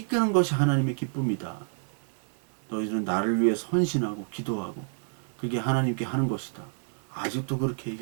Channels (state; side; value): silent; left; digital silence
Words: 것이 하나님의 기쁨이다. 너희들은 나를 위해서 헌신하고 기도하고 그게 하나님께 하는 것이다. 아직도 그렇게